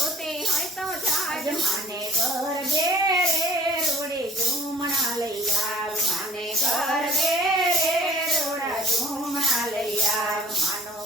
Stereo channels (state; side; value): normal; both; correlation 0.54